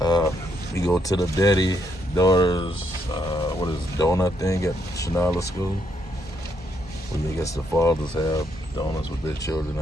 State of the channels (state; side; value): normal; both; correlation 0.75